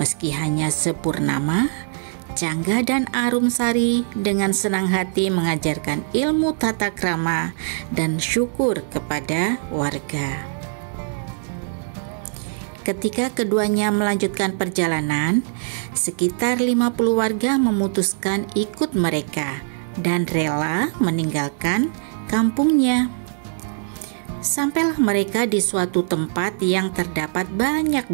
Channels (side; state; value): left; silent; digital silence